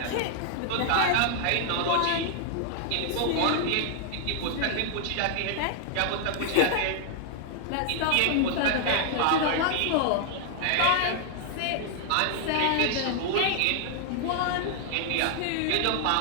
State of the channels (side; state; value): both; different; correlation 0.00